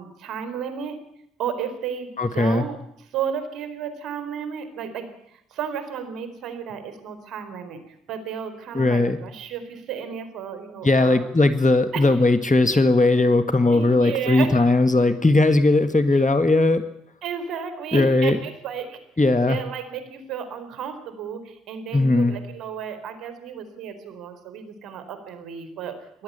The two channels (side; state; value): both; normal; correlation 0.80